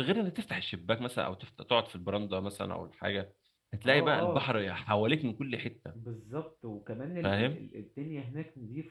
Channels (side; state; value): both; identical; correlation 1.00